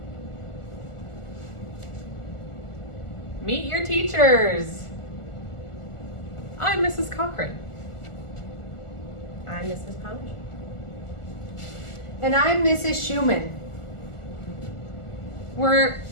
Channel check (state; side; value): late; right; 1.4 ms